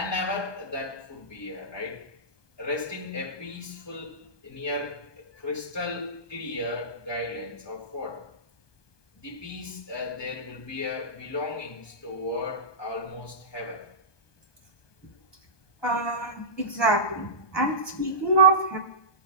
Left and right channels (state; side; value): late; right; 1.2 ms